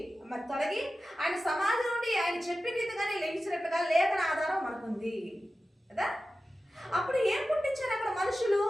మరి తొలగి ఆయన సమాధి నుండి ఆయన చెప్పిన రీతిగానే లేచినట్టుగా లేఖన ఆధారం మనకుంది కదా. అప్పుడు ఏం పుట్టించారు అక్కడ మనుషులు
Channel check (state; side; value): normal; both; correlation 0.94